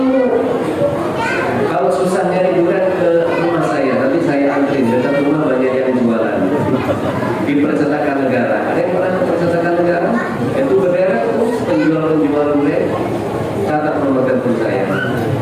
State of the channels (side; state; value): both; identical; correlation 1.00